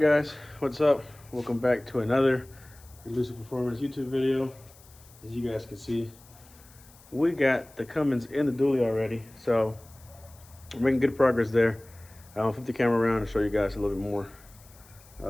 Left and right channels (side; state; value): left; noise; hiss, 25 dB below the sound